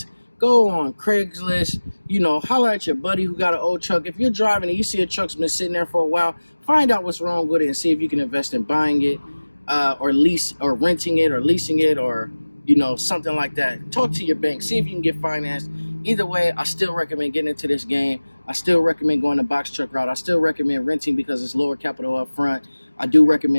go on Craigslist, holler at your buddy who got an old truck. If you're driving and you see a truck's been sitting there for a while, find out what's wrong with it and see if you can invest in buying it, or lease, or renting it, or leasing it, or, something like that. Talk to your bank, see if you can get financed. Either way, I still recommend getting into this game. I still recommend going the box truck route. I still recommend renting because it's lower capital up front. I do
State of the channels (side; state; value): both; inverted; correlation -1.00